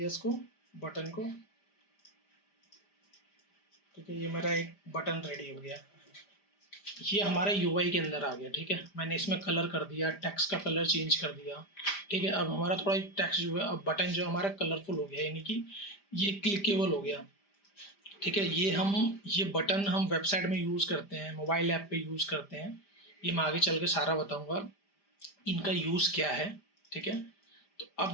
इसको, बटन को, ठीक है। ये मेरा एक बटन रेडी हो गया, ये हमारे यूआई के अंदर आ गया, ठीक है। मैंने इसमें कलर कर दिया, टेक्स्ट का कलर चेंज कर दिया, ठीक है। अब हमारा थोड़ा टेक्स्ट जो है, अब बटन जो हमारा कलरफुल हो गया, यानी कि ये क्लिकेबल हो गया, ठीक है। ये बटन हम वेबसाइट में यूज़ करते हैं, मोबाइल ऐप पे यूज़ करते हैं, ये मैं आगे चल के सारा बताऊंगा इनका यूज़ क्या है, ठीक है। तो अब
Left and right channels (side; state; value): right; late; 5.0 ms